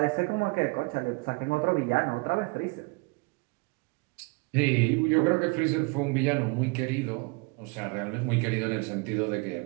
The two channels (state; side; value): quieter; left; 28.2 dB